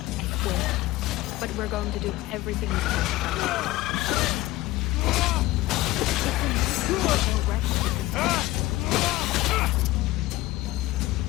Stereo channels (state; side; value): quieter; right; 17.6 dB